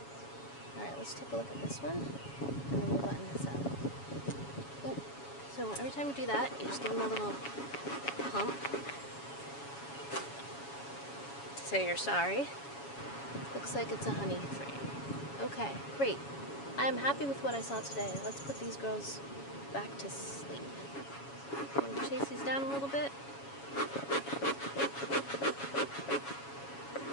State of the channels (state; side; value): late; right; 7.2 ms